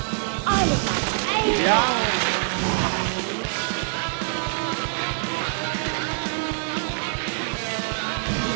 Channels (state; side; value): silent; left; digital silence